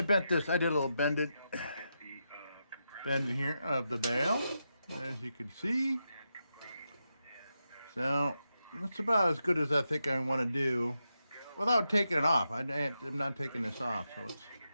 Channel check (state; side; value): inverted; both; correlation -0.86